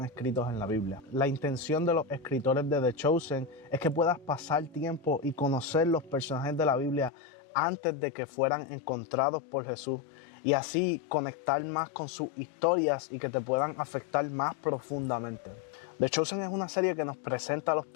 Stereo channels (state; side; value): drops out; right; at 7.1 s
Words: escritos en la Biblia. La intención de los escritores de The Chosen es que puedas pasar tiempo y conocer los personajes de la Biblia antes de que fueran encontrados por Jesús, y así conectar más con sus historias y que te puedan afectar más profundamente. The Chosen es una serie que nos presenta a los